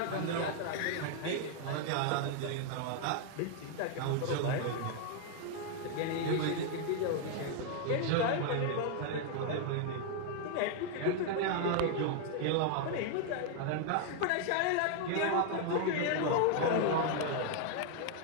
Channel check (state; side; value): different; both; correlation 0.00